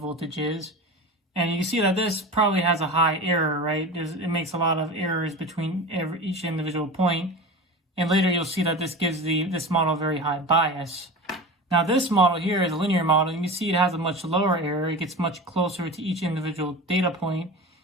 is. And you can see that this probably has a high error, right? It makes a lot of errors between each individual point. And later you'll see that this gives this model a very high bias. Now this model here is a linear model. You can see it has a much lower error. It gets much closer to each individual data point,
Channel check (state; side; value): normal; both; correlation 0.30